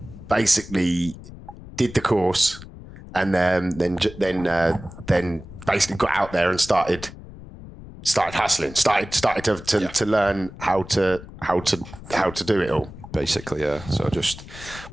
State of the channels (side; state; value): left; noise; rumble, 15 dB below the sound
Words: basically did the course, and then basically got out there and started hustling, started to learn how to do it all. Basically, yeah. So I just